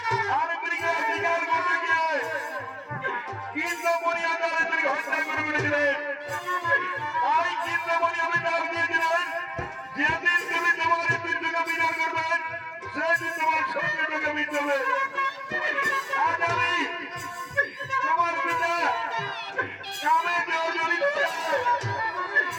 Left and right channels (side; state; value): both; identical; correlation 1.00